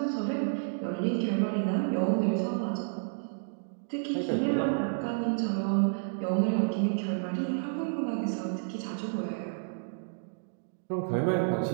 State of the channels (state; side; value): silent; left; digital silence